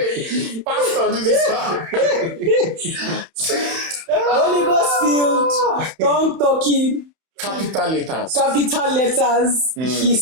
Pastor, do this part. Holy Ghost filled, tongue talking, capital letters. He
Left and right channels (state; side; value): late; left; 31 ms